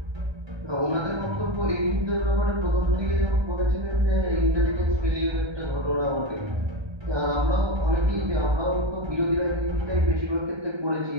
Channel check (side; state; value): left; late; 1.2 ms